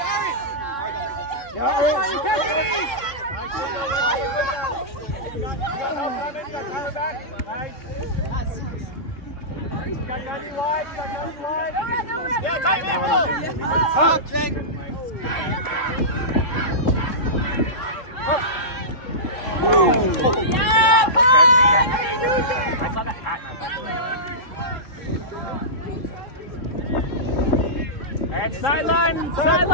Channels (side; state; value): right; late; 3.7 ms